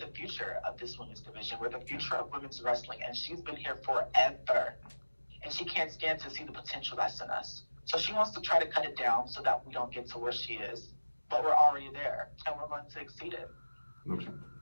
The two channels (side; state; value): both; inverted; correlation -1.00